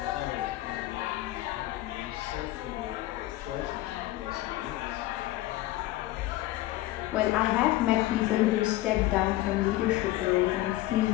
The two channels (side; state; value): right; quieter; 16.5 dB